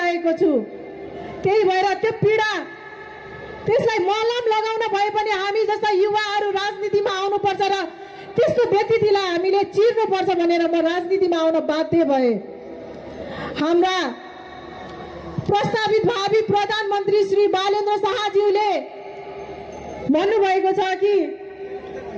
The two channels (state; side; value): identical; both; correlation 1.00